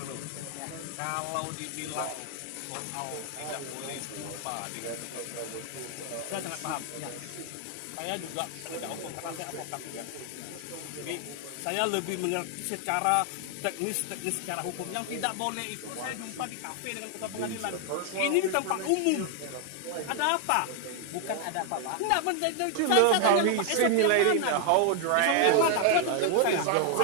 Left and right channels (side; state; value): both; different; correlation 0.00